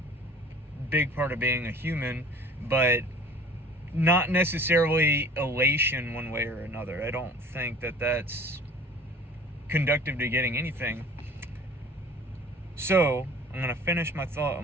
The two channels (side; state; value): both; normal; correlation 0.46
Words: big part of being a human, but not necessarily elation one way or another. I don't think that that's conducive to getting anything. So I'm going to finish my thought